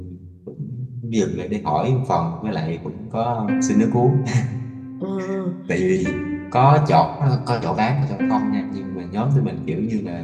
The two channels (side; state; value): both; identical; correlation 1.00